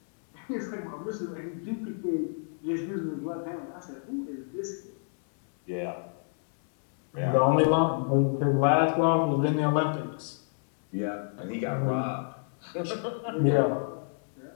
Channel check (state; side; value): silent; right; digital silence